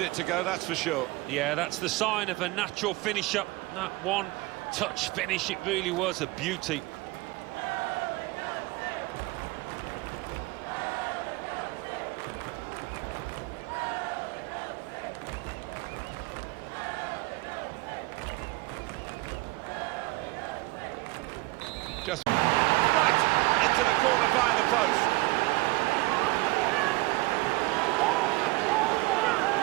it to go, that's for sure. Yeah, that's the sign of a natural finish-up. That one-touch finish, it really was a beauty. Just right into the corner by the post.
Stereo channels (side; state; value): left; quieter; 21.8 dB